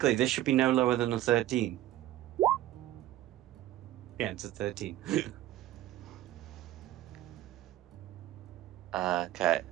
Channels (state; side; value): quieter; left; 14.1 dB